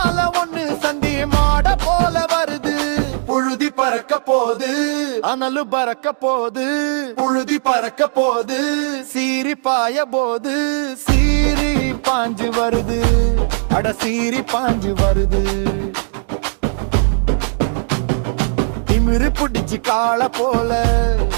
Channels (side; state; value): left; silent; digital silence